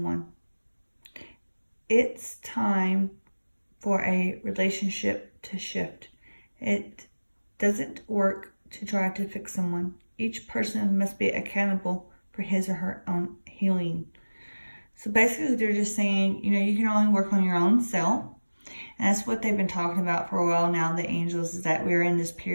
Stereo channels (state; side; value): inverted; both; correlation -1.00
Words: It's time for a relationship to shift. It doesn't work to try to fix someone. Each person must be accountable for his or her own healing. So basically they're just saying, you can only work on your own self. And that's what they've been talking about for a while now, the angels, is that we're in this